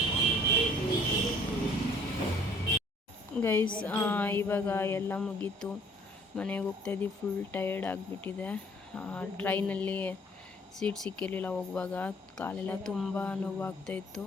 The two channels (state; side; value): normal; both; correlation 0.57